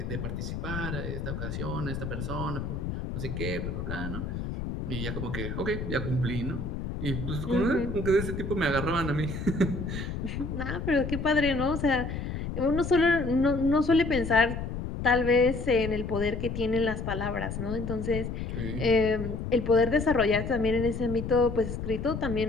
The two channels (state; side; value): noise; left; rumble, 5 dB below the sound